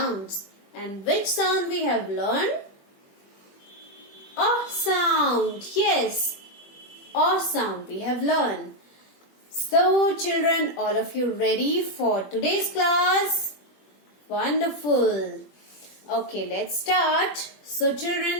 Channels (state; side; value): late; right; 21 ms